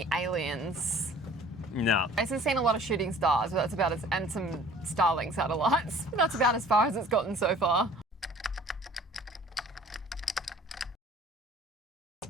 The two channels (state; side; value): normal; both; correlation 0.51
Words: aliens? No. Jason's seen a lot of shooting stars, but that's about as, and some Starlink satellites. But that's about as far as it's gotten so far.